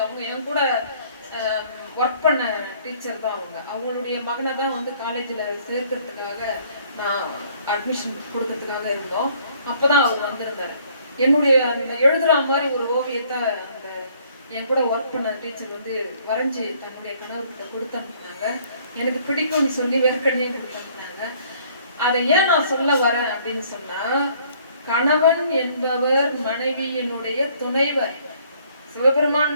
அவங்க என் கூட ஒர்க் பண்ண டீச்சர் தான். அவங்களுடைய மகனை தான் காலேஜில் சேர்க்கறதுக்காக நான் அட்மிஷன் கொடுக்கறதுக்காக இருந்தோம். அப்போ தான் அவர் வந்திருந்தார். என்னுடைய அந்த எழுதுற மாதிரி ஒரு ஓவியத்தை அந்த என் கூட ஒர்க் பண்ண டீச்சர் வரைஞ்சி தன்னுடைய கணவர்கிட்ட கொடுத்து அனுப்புனாங்க. எனக்கு பிடிக்கும்னு சொல்லி வேர்க்கண்ணையும் கொடுத்து அனுப்புனாங்க. அதை ஏன் நான் சொல்ல வரேன் அப்படின்னு சொன்னால், கணவன் என்பவர் மனைவியினுடைய துணைவர். சிவபெருமான்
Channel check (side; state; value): both; inverted; correlation -0.61